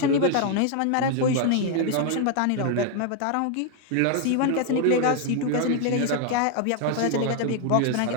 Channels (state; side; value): different; both; correlation 0.00